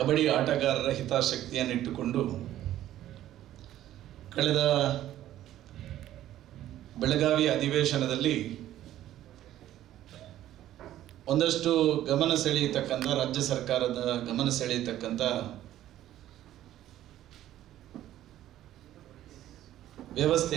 ಆಟಗಾರರ ಹಿತಾಸಕ್ತಿಯನ್ನಿಟ್ಟುಕೊಂಡು ಕಳೆದ ಬೆಳಗಾವಿ ಅಧಿವೇಶನದಲ್ಲಿ ಒಂದಷ್ಟು ಗಮನ ಸೆಳೆಯತಕ್ಕಂಥ ರಾಜ್ಯ ಸರ್ಕಾರದ ಗಮನ ಸೆಳೆಯತಕ್ಕಂಥ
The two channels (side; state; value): left; quieter; 13.0 dB